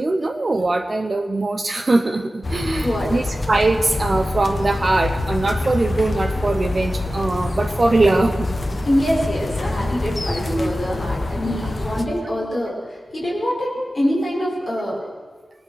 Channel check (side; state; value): both; normal; correlation 0.94